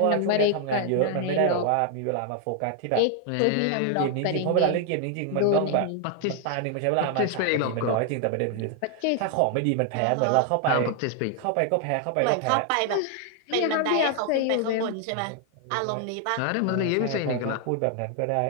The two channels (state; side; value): different; both; correlation 0.00